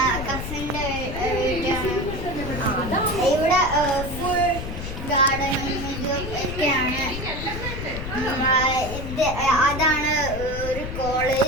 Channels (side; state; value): left; noise; rumble, 7 dB below the sound